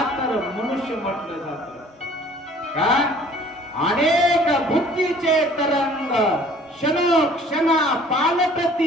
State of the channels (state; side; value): normal; both; correlation 0.53